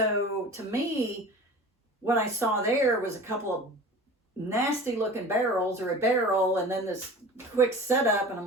to me, what I saw there was a couple of nasty looking barrels, or a barrel, and then this quick setup, and I'm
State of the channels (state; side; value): normal; both; correlation 0.39